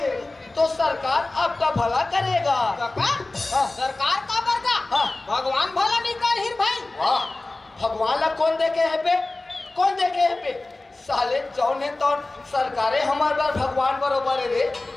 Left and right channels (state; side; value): quieter; right; 3.0 dB